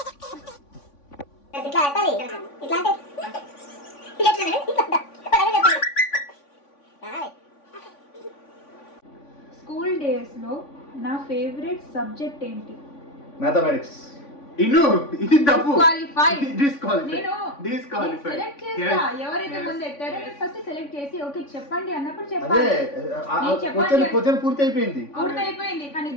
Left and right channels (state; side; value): late; right; 3.5 ms